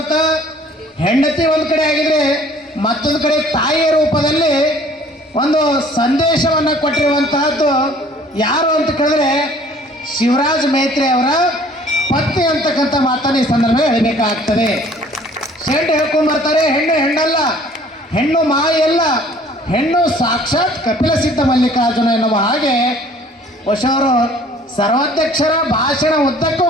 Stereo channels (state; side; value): normal; both; correlation 0.54